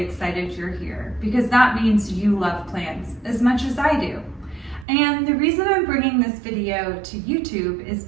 you're here because that means you love plants as much as I do. And the reason I'm bringing this video to YouTube is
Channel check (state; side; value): drops out; left; at 4.9 s